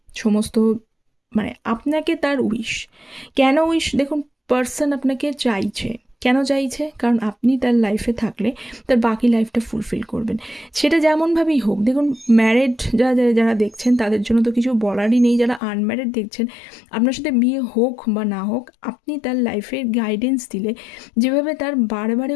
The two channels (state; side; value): drops out; right; at 15.6 s